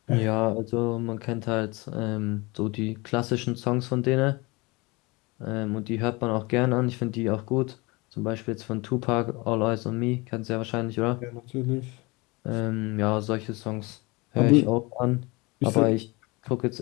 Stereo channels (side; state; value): right; quieter; 25.3 dB